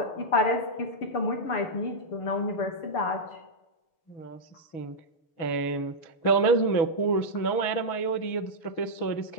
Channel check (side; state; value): right; late; 6.2 ms